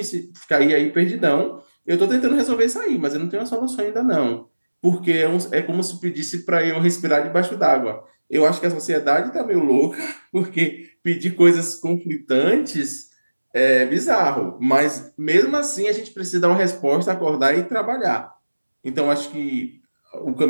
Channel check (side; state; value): both; inverted; correlation -1.00